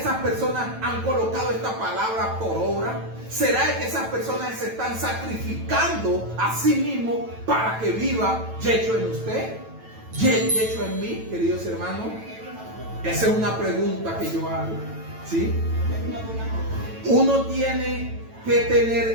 esas personas han colocado esta palabra por obra? ¿Será de que esas personas se están sacrificando a sí mismos para que viva Yeshua en usted? ¿Yeshua en mí, queridos hermanos? Esa es una pregunta que yo hago, ¿sí? Uno tiene que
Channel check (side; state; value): left; late; 9.1 ms